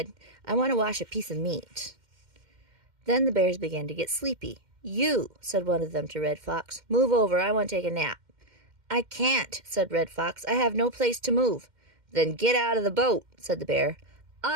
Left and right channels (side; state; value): left; late; 2.1 ms